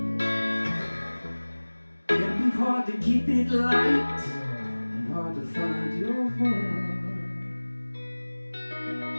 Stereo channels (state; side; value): inverted; both; correlation -1.00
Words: Can be hard to keep it light and hard to find your voice.